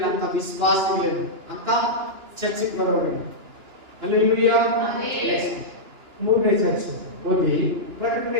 ಅಂತ ವಿಶ್ವಾಸಗಳೇನು ಅಂತ ಚರ್ಚಿಗೆ ಬರೋರು. ಹಲ್ಲೆಲೂಯಾ. ಮೂರನೇ ಚರ್ಚ್ ಓದಿ, ಪ್ರಕಟಣೆ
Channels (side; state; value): left; late; 2.9 ms